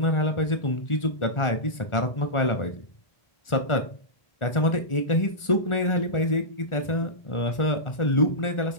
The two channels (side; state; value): right; late; 1.4 ms